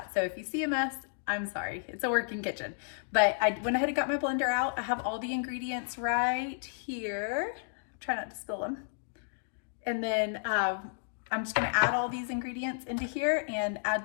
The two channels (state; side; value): silent; right; digital silence